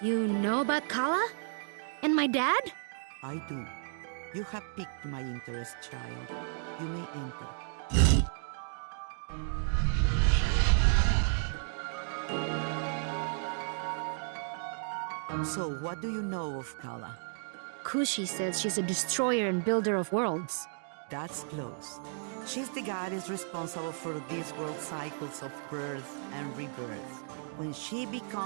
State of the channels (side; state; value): left; silent; digital silence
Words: You know about Kala? And my dad? I do. You have piqued my interest, child. You may enter. So, what do you know of Kala? Kushi says she's a destroyer and builder of worlds. That's close. She's the goddess responsible for this world's cycles of birth and rebirth. When she